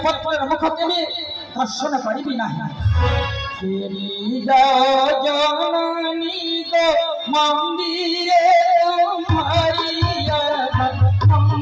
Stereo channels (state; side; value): identical; both; correlation 1.00